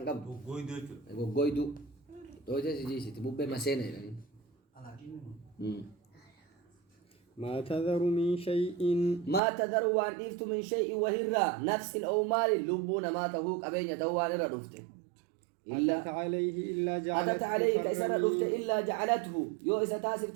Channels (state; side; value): drops out; left; at 9.4 s